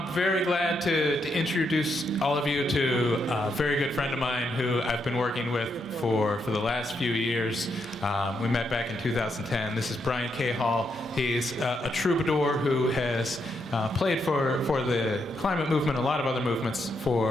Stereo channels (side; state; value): both; normal; correlation 0.80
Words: very glad to introduce all of you to a very good friend of mine who I've been working with for the last few years. We met back in 2010. This is Brian Cahall. He's a troubadour who has played for the climate movement, a lot of other movements